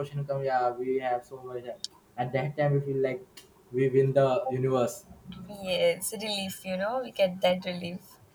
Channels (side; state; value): both; identical; correlation 1.00